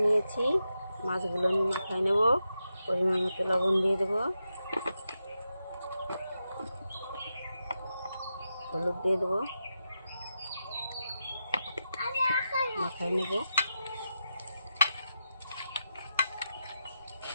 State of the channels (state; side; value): inverted; both; correlation -0.88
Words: নিয়েছি, মাছগুলো আমি মাখায় নেব। পরিমাণ মতো লবণ দিয়ে দেবো, হলুদ দিয়ে দেবো, মাখায় নেব।